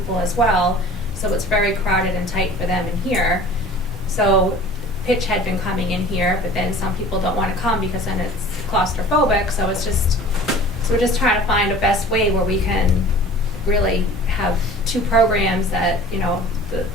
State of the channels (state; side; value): normal; both; correlation 0.44